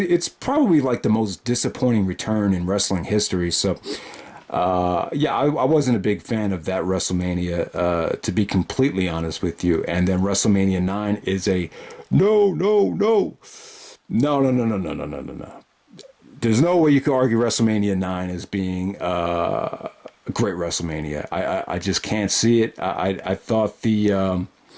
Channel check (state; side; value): identical; both; correlation 1.00